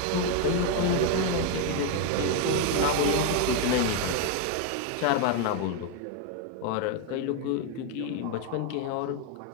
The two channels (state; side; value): different; both; correlation 0.01